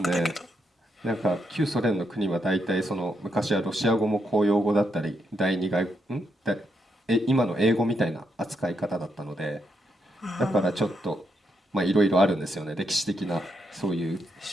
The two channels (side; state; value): both; normal; correlation 0.80